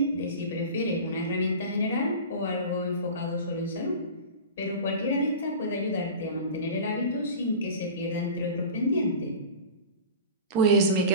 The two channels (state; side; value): inverted; both; correlation -0.34